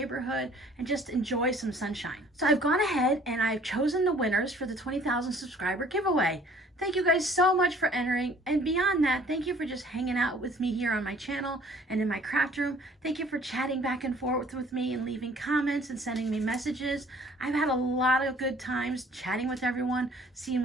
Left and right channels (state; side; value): normal; both; correlation 0.54